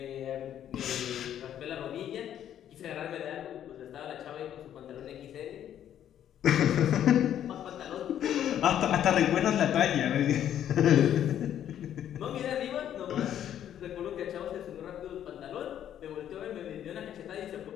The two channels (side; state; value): right; quieter; 10.4 dB